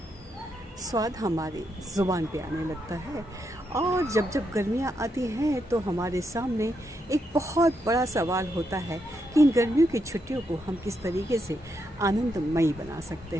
स्वाद हमारी ज़ुबान पे आने लगता है और जब जब गर्मियाँ आती हैं तो हमारे सामने एक बहुत बड़ा सवाल होता है कि इन गर्मियों की छुट्टियों को हम किस तरीके से आनंदमयी बना सकते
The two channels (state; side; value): normal; both; correlation 0.81